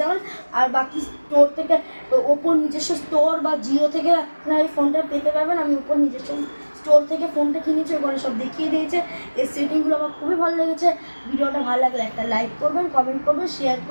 যাবেন। আর বাকি স্টোর থেকে, ওপর নিজস্ব স্টোর বা জিও থেকে আপনারা এই ফোনটা পেতে পারবেন। আমি ওপর নিজস্ব স্টোর থেকে ফোনটা কিনেছি, ওখানে সব দেখিয়ে দিয়েছে। এই সেটিংগুলো আমার খুবই ভালো লেগেছে। ভিডিওটা ভালো লাগলে একটা লাইক করবেন, কমেন্ট করবেন, শেয়ার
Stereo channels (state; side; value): inverted; both; correlation -1.00